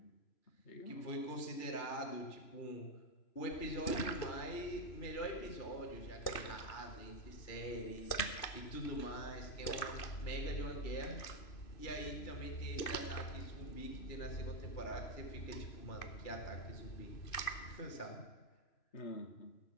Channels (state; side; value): late; right; 3.0 ms